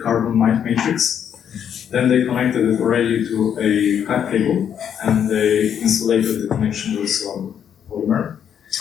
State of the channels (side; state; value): right; quieter; 8.7 dB